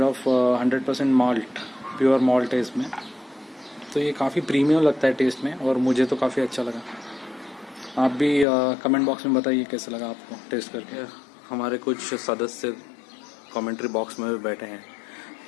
of 100% malt, pure malt है इसमें। तो ये काफ़ी प्रीमियम लगता है टेस्ट में और मुझे तो काफ़ी अच्छा लगा। आप भी कमेंट बॉक्स में बताइए कैसा लगा आपको टेस्ट करके। हमारे कुछ सदस्य कमेंट्री बॉक्स में भी बैठे हैं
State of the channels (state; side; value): drops out; right; at 8.5 s